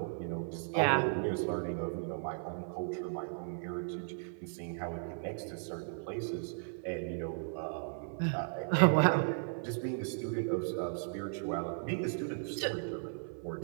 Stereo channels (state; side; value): silent; left; 54 dB below the other